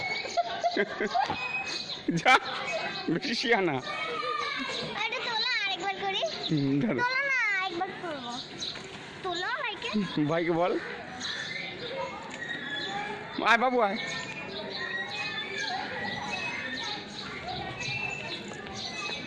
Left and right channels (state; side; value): identical; both; correlation 1.00